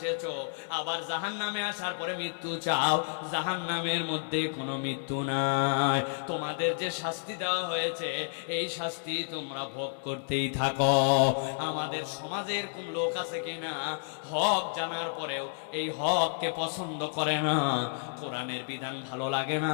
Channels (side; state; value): right; silent; digital silence